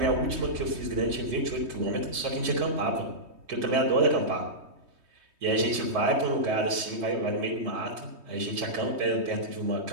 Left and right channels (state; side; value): late; left; 3.2 ms